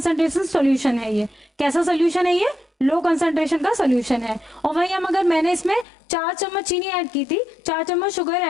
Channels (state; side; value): drops out; right; at 5.9 s